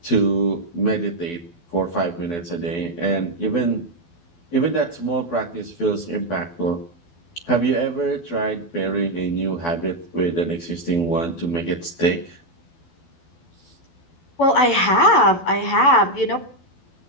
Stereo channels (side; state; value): right; late; 12 ms